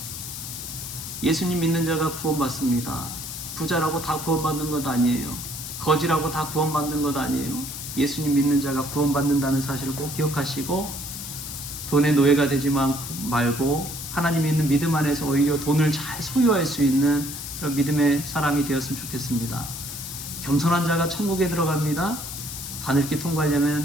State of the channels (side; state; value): left; noise; hiss, 8 dB below the sound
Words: 예수님 믿는 자가 구원받습니다. 부자라고 다 구원받는 것 아니에요. 거지라고 다 구원받는 것 아니에요. 예수님 믿는 자가 구원받는다는 사실을 꼭 기억하시고, 돈의 노예가 되지 말고 하나님 있는 믿음 안에서 오히려 돈을 잘 소유할 수 있는 그런 믿음의 사람이 되었으면 좋겠습니다. 겸손한 자가 천국에 들어갑니다. 바늘길